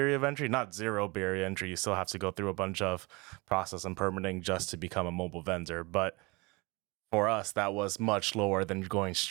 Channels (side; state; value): left; quieter; 26.0 dB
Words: of entry, not zero barrier entry. You still have to go through a bunch of process and permitting just to become a mobile vendor. But for us, that was much lower than going